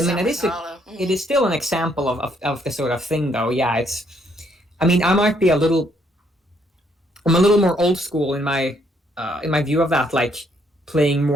mean, it is still an example of the sort of thing, though. Yeah, it's. I mean, I'm a little more old school in my view of that, like playing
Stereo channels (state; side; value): normal; both; correlation 0.70